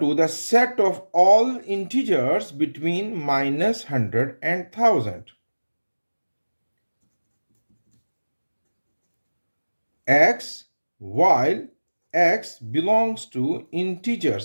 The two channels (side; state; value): both; inverted; correlation -1.00